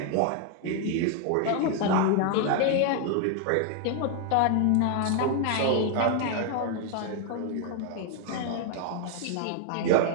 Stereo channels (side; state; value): both; different; correlation 0.00